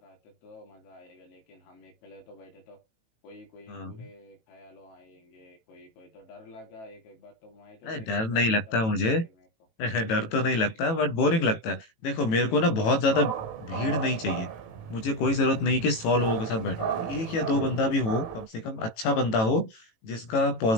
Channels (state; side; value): late; right; 18 ms